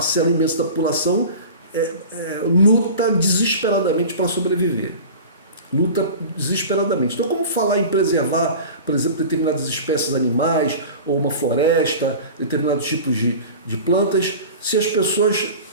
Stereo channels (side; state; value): both; inverted; correlation -0.36